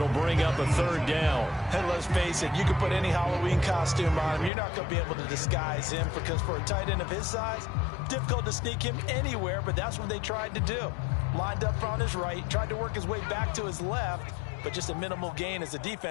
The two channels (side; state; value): right; drops out; at 4.5 s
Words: bring up a 3rd down. And let's face it, you can put any Halloween costume on him. You're not going to be able to disguise him because for a tight end of his size, difficult to sneak him anywhere, but that's what they tried to do. Lined up on his right, tried to work his way back to his left, but just a minimal gain as the